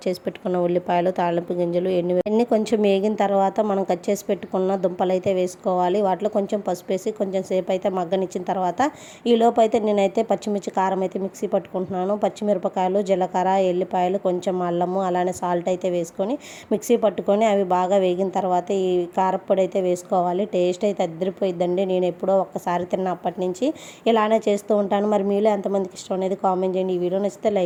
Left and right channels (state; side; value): identical; both; correlation 1.00